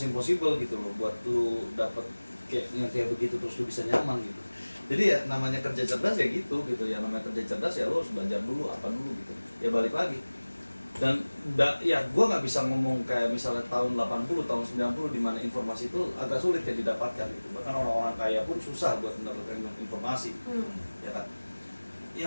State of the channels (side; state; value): both; inverted; correlation -1.00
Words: impossible gitu loh buat lu dapet kayak begitu terus lu bisa nyaman gitu. Jadi ya namanya kerja cerdas ya gitu ya, namanya kerja cerdas ya lu harus belajar dulu apa dulu gitu ya, balik lagi. Dan ya gue nggak bisa ngomong kayak misalnya tahun 80 tahun 90 di mana informasi itu agak sulit ya didapatkan gitu, bahkan orang-orang kaya pun susah buat mendapatkan informasi ya kan. Ya